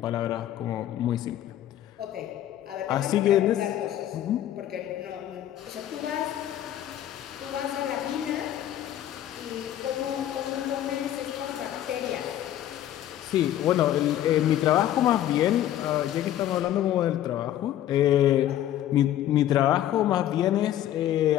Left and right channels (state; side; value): quieter; right; 12.1 dB